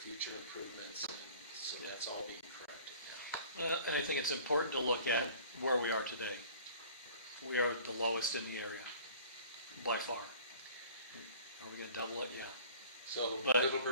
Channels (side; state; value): both; inverted; correlation -0.48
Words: improvements, and so that's all being corrected now. And I think it's important to look at where we are today. We are the lowest in the area, by far. Are we going to double it? Yeah. So But-